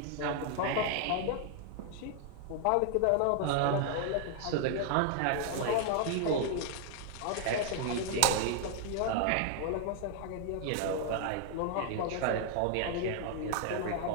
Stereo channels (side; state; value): both; different; correlation 0.00